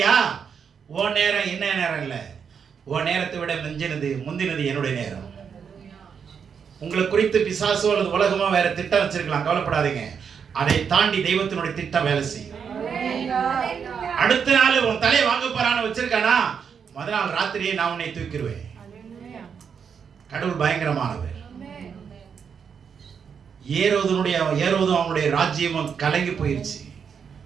ஓ நேரம் என்ன நேரம் இல்லை, ஓ நேரத்தை விட முந்தினது என்னுடைய நேரம். உங்களை குறித்து பிசாசோ அல்லது உலகமோ வேற திட்டம் வச்சிருக்கலாம், கவலைப்படாதீங்க. அதை தாண்டி தெய்வத்தினுடைய திட்டம் வேலை செய்யும். அடுத்த நாள் உன் தலையை வாங்க போறான்னு வச்சிருக்கானா, முதல் நாள் ராத்திரியே நான் உன்னை தூக்கிடுவேன். கடவுள் பயங்கரமானவர். ஏரோதும் அவனுடைய ராஜ்யமும் கலங்கி போயிருச்சு.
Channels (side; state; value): left; quieter; 6.8 dB